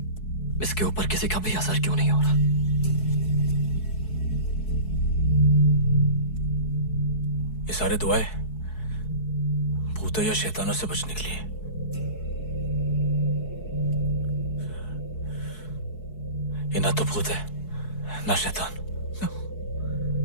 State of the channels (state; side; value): late; right; 4.7 ms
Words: इसके ऊपर किसी का भी असर क्यों नहीं हो रहा? ये सारे दुआएं भूतों या शैतानों से बचने के लिए। ये ना तो भूत है ना शैतान।